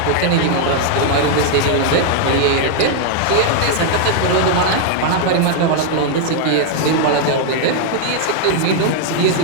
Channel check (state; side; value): different; both; correlation 0.00